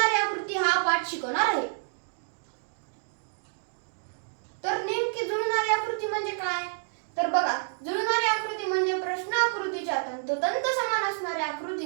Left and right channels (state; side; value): silent; left; digital silence